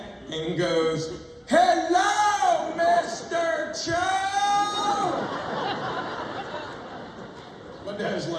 and goes, hello, Mr. Cho! My dad's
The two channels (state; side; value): identical; both; correlation 1.00